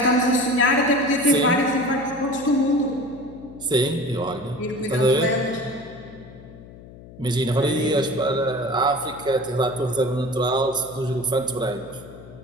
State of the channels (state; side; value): noise; left; hum, 18 dB below the sound